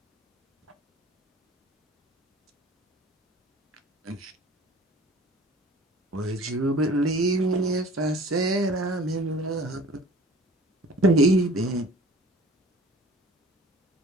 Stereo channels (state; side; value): normal; both; correlation 0.47